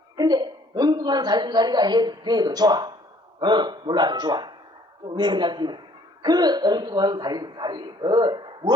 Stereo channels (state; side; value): normal; both; correlation 0.59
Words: 근데 엉뚱한 살림살이가 해도 좋아. 몰라도 좋아. 왜 그러냐면 그 엉뚱한 살림살이